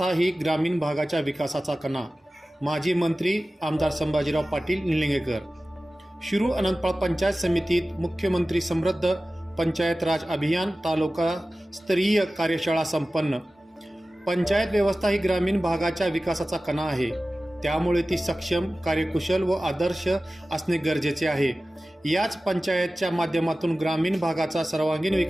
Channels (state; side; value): normal; both; correlation 0.96